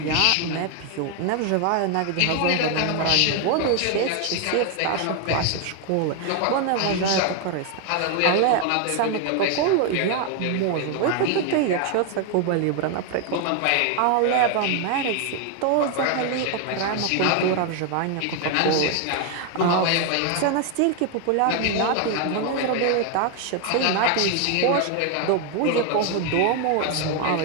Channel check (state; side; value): different; both; correlation 0.01